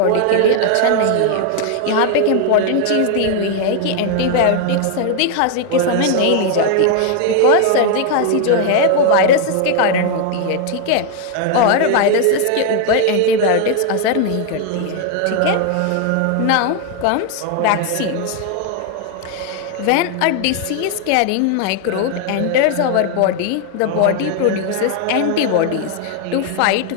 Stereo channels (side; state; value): both; different; correlation 0.00